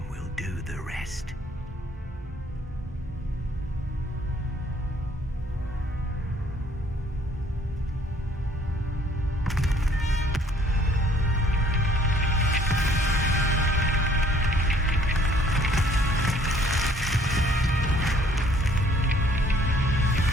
will do the rest.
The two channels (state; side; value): normal; both; correlation 0.61